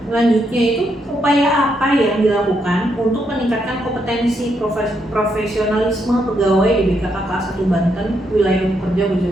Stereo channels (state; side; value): normal; both; correlation 0.78